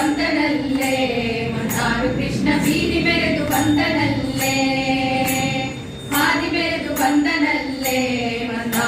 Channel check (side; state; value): both; identical; correlation 1.00